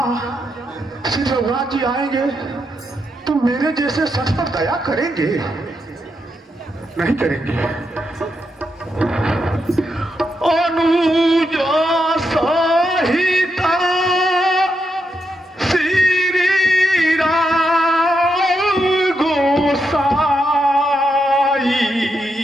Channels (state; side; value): normal; both; correlation 0.83